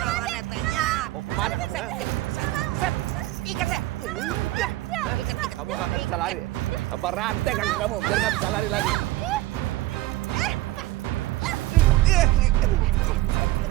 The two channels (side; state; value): left; quieter; 16.9 dB